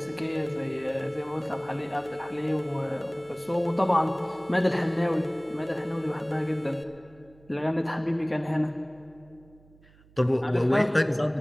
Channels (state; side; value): noise; right; hum, 27 dB below the sound